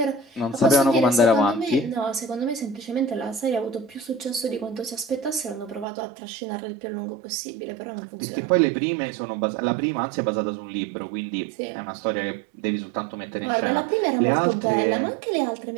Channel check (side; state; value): left; drops out; at 5.9 s